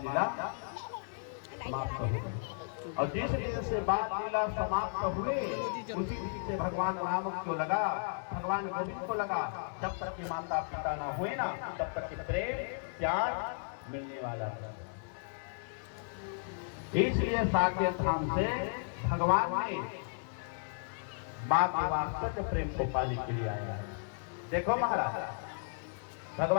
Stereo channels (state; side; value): silent; right; digital silence